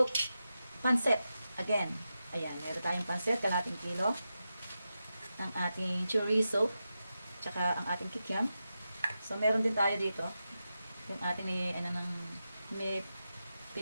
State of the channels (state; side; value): inverted; both; correlation -0.90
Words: pansit again. Ayan, meron tayong pansit, kalating kilo. Ang ating chorizo, tsaka ang ating kikiam. So, meron din tayo dito. Yung ating may